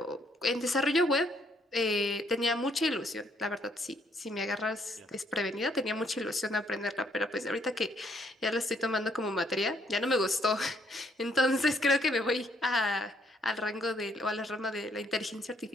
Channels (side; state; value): both; normal; correlation 0.69